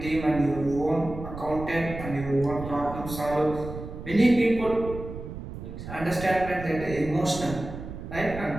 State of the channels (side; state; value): right; noise; rumble, 10 dB below the sound